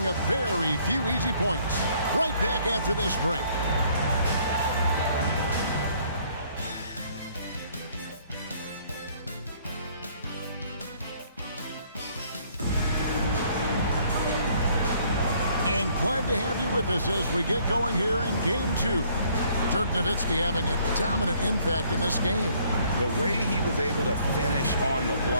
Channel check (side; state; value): both; inverted; correlation -0.62